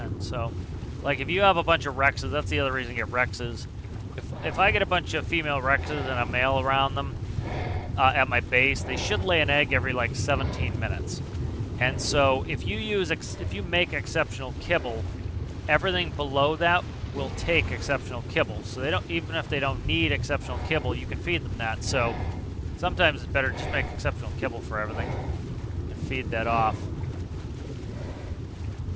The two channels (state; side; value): identical; both; correlation 1.00